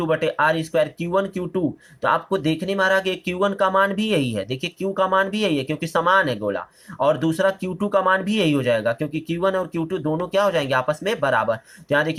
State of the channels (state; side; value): identical; both; correlation 1.00